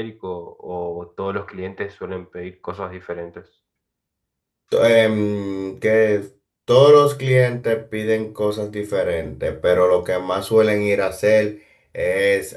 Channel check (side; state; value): both; identical; correlation 1.00